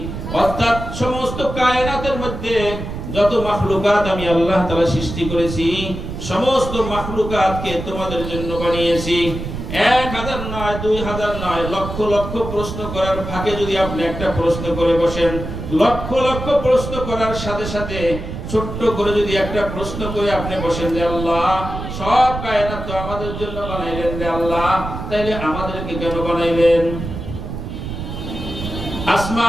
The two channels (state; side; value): noise; right; rumble, 7 dB below the sound